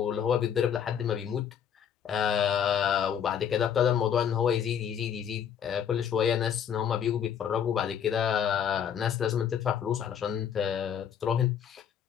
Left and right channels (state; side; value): quieter; right; 8.4 dB